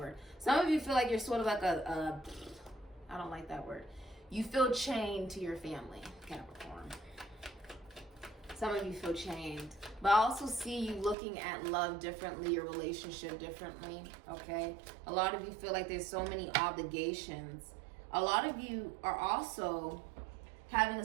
Some of you feel like you're sort of like I don't like that word. You feel chained to your family, Capricorn. Some of you feel chained. But I also see you looking at love differently, your relationship differently, okay? A lot of you feel like there's so many obligations. A lot of you are also having a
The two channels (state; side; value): drops out; left; at 11.2 s